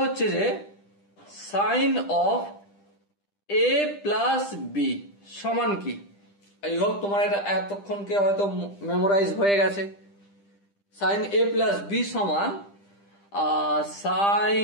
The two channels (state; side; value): late; right; 10 ms